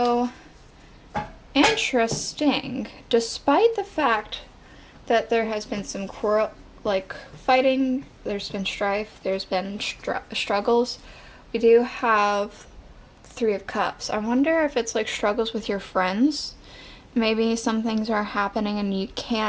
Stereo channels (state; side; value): identical; both; correlation 1.00